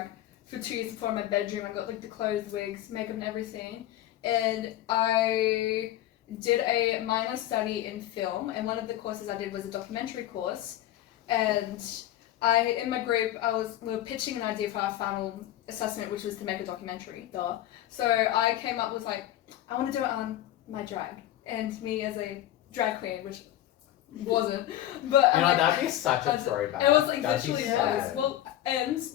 for 2 years before in my bedroom. I got like the clothes, wigs, makeup and everything. And I did a minor study in film, and one of the courses I did was a documentary course. And in my group, we were pitching an idea for our final assessment, which was to make a documentary, duh. So I came up with like, I want to do it on my drag, and me as a drag queen, which wasn't, but that'd be such a throwback. It was like That'd literally sad. well, and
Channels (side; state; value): right; quieter; 13.2 dB